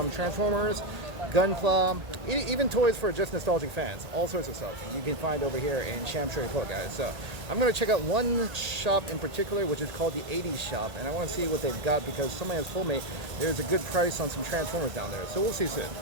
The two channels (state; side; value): late; left; 1.8 ms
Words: Transformers, Gunpla, even toys for just nostalgic fans. All sorts of stuff you can find over here in Sham Shui Po, guys. So I'm going to check out one shop in particular which is called the 80s shop, and I want to see what they've got because somebody has told me there's a good price on some Transformers down there. So we'll see soon.